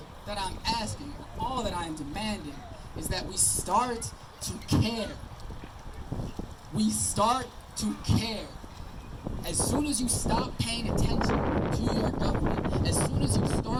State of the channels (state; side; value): identical; both; correlation 1.00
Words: that I am demanding is that we start to care. We start to care. As soon as you stop paying attention to your government, as soon as